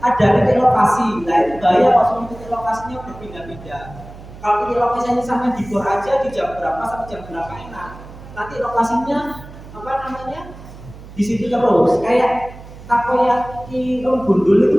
ada titik lokasi, nah itu bahaya kalau semua titik lokasinya berpindah-pindah. Kalau titik lokasinya sampai di bor aja, di jam berapa sampai jam berapa enak. Nanti lokasinya apa namanya di situ terus, kayak takoyaki gundul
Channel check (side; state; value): right; noise; hum, 17 dB below the sound